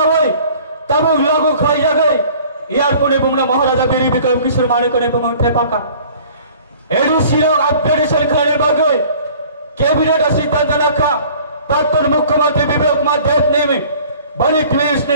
হয় तब लागू खाई जागै एयरपोर्ट बुमना महाराजा बीर विक्रम किशोर माणिकने बमंग टेपाका एडीसी अपडेशन खाने बागै कैबिनेट सिद्धांत नाखा प्राक्तन मुख्यमंत्री विवेक कुमार देव ने बड़ी क्लिस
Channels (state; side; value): inverted; both; correlation -0.50